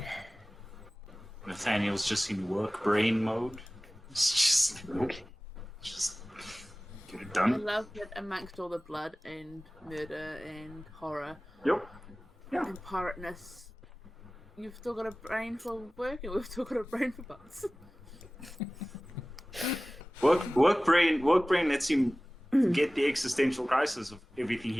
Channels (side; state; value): both; normal; correlation 0.98